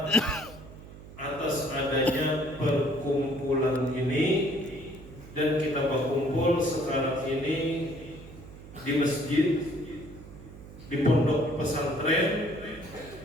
atas adanya perkumpulan ini, dan kita berkumpul sekarang ini di masjid, di pondok pesantren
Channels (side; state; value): right; noise; hum, 16 dB below the sound